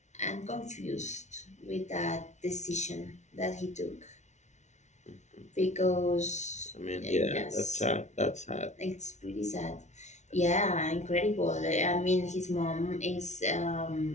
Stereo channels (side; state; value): right; late; 0.33 ms